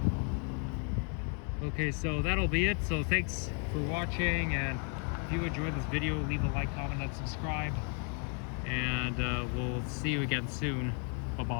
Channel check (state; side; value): quieter; right; 38.7 dB